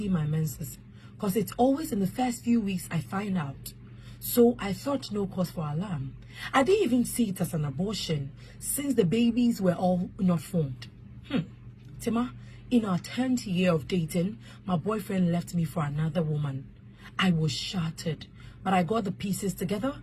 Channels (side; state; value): both; identical; correlation 1.00